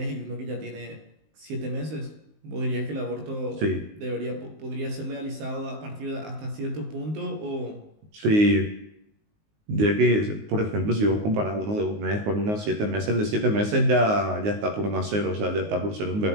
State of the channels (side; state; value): left; late; 19 ms